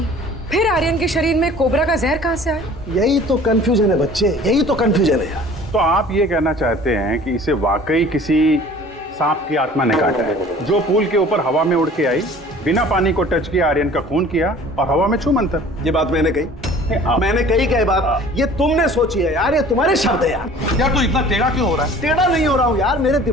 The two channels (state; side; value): normal; both; correlation 0.48